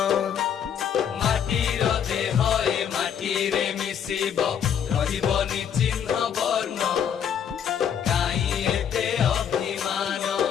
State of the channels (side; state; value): right; quieter; 8.4 dB